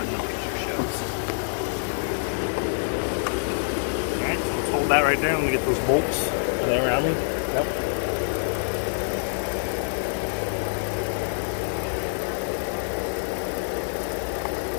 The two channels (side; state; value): right; silent; digital silence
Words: the picture shows. Alright, so let's hold that right there. Let me get those bolts. Are they around me? Yep.